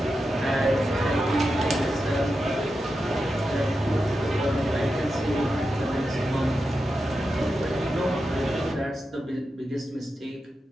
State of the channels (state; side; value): normal; both; correlation 0.89